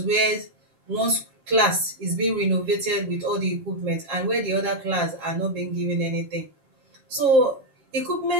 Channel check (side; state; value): left; late; 7.4 ms